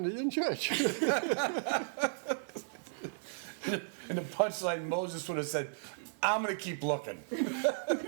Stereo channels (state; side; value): silent; left; digital silence